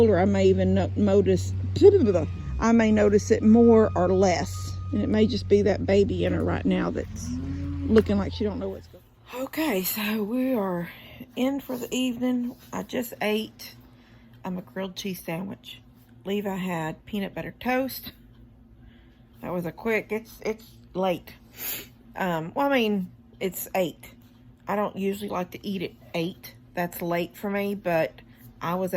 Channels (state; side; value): identical; both; correlation 1.00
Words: I may even notice it more or less. And it may just be that baby in her right now that's looking like she don't know what's going on. Okay, so we are in for the evening. I just ate a grilled cheese sandwich. Levi had peanut butter toast. That was a quick, it's late. Well, I mean, it's 8. I don't usually like to eat at 8. That's late for me, but I was